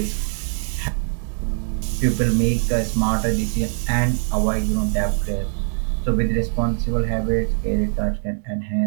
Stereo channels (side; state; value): left; silent; 59 dB below the other